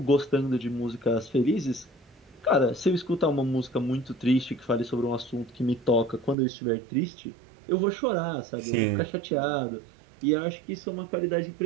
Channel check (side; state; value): left; drops out; at 6.4 s